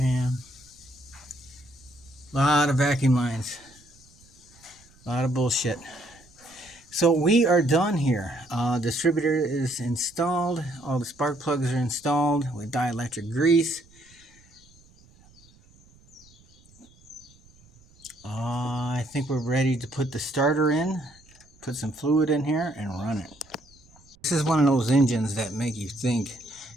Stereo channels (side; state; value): right; noise; rumble, 28 dB below the sound